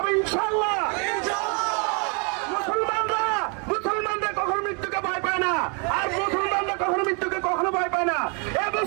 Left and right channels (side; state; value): left; quieter; 35.8 dB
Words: ইনশাআল্লাহ। মুসলমানরা কখনো মৃত্যুকে ভয় পায় না, আর মুসলমানরা কখনো মৃত্যুকে কখনো ভয় পায় না। এই